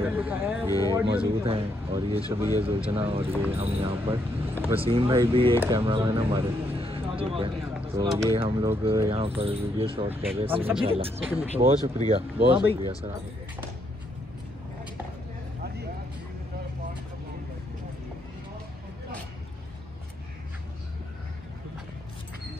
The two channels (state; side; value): normal; both; correlation 0.75